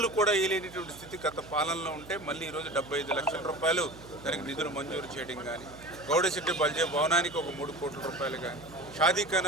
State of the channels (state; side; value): noise; right; hum, 18 dB below the sound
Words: కూడా వేయలేనటువంటి స్థితి గత పాలనలో ఉంటే మళ్ళీ ఈరోజు 75 లక్షల రూపాయలు దానికి నిధులు మంజూరు చేయడం కానీ గౌడశెట్టి బల్జే భవనానికి ఒక 3 కోట్ల రూపాయలు కానీ